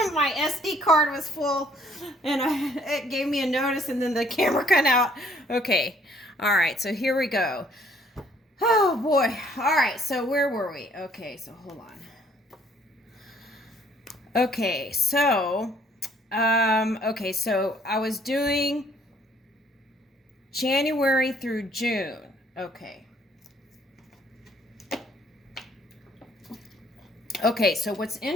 my SD card was full and it gave me a notice and then the camera cut out. Okay, all right, so here we go. Oh boy, all right, so where were we? Okay, so hold on. Okay, so I was doing January through June. Okay. Okay, so what's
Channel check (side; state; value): both; normal; correlation 0.62